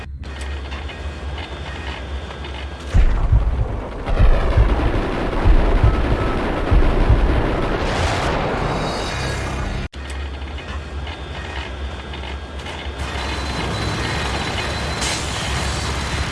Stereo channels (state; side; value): identical; both; correlation 1.00